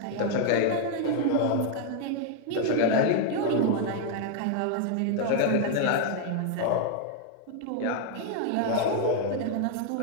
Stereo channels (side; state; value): both; different; correlation 0.00